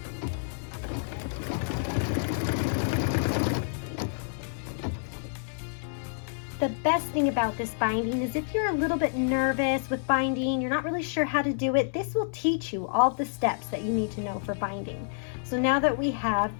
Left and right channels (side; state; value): right; silent; digital silence